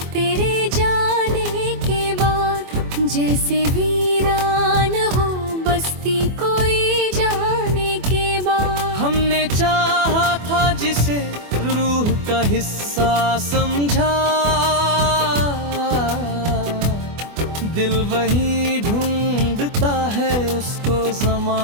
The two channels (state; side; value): late; left; 24 ms